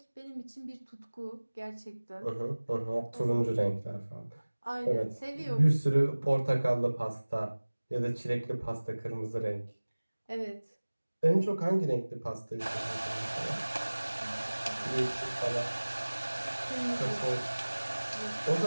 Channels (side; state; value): both; inverted; correlation -1.00